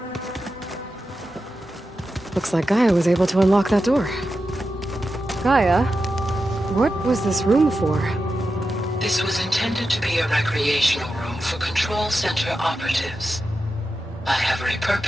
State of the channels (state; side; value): normal; both; correlation 0.90